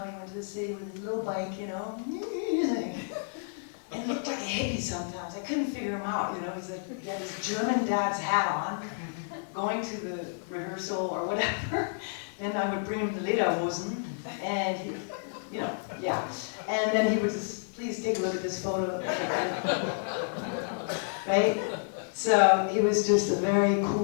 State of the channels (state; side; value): silent; right; digital silence